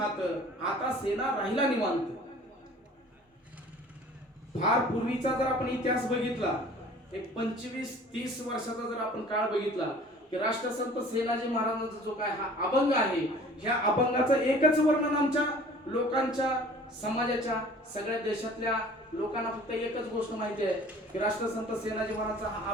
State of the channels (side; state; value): both; normal; correlation 0.48